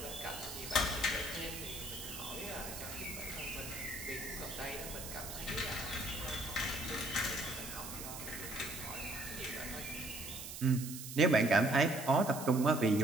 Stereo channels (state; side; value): noise; right; hiss, 9 dB below the sound